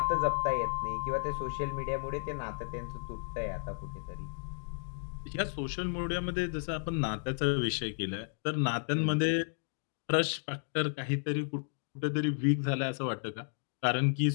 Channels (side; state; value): right; silent; digital silence